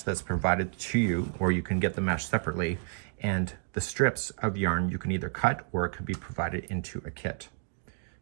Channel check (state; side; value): silent; left; digital silence